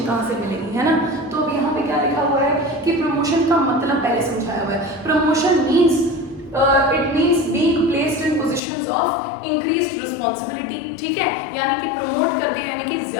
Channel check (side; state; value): right; drops out; at 8.6 s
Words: कहाँ से मिलेगी, है ना। तो अब यहाँ पे क्या लिखा हुआ है कि प्रमोशन का मतलब पहले समझाया हुआ है। Promotion means it means being placed in positions of increased responsibility, ठीक है, यानी कि प्रमोट कर दिया, यानी कि